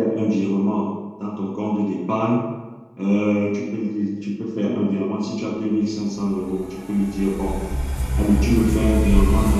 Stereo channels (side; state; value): both; identical; correlation 1.00